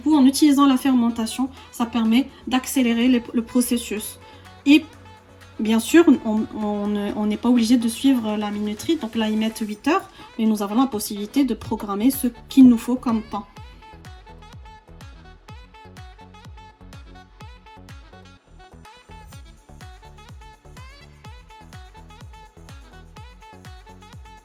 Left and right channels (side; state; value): both; identical; correlation 1.00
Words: en utilisant la fermentation, ça permet d'accélérer le processus. Et bien sûr, on n'est pas obligé de suivre la minuterie, donc là, ils mettent 8 heures, mais nous avons la possibilité de programmer ce qu'il nous faut comme temps.